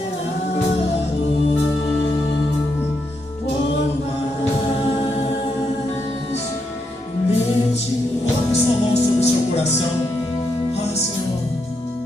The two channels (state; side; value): normal; both; correlation 0.81